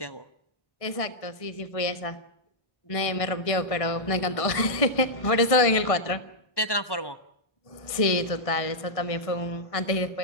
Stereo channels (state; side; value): late; right; 1.5 ms